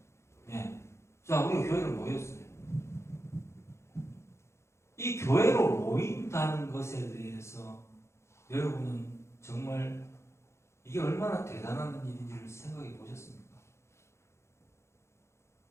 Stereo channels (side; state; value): right; late; 0.13 ms